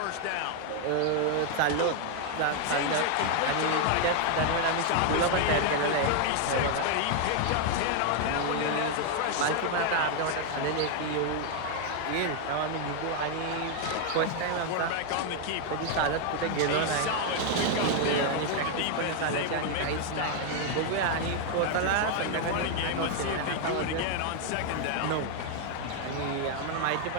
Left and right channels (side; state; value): both; different; correlation 0.01